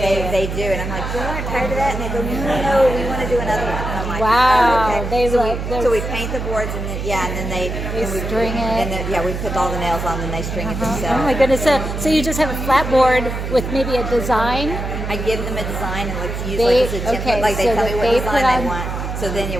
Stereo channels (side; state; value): right; noise; hum, 5 dB below the sound